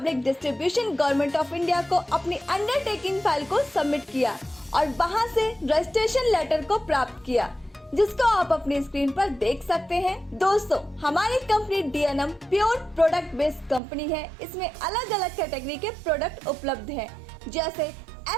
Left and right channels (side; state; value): left; drops out; at 13.8 s